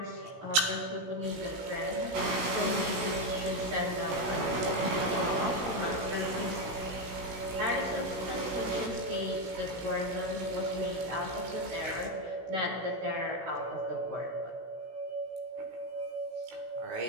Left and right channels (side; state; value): left; late; 16 ms